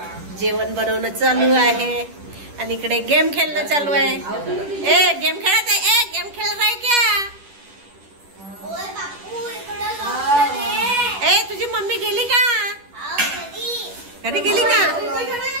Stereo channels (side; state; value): left; late; 10 ms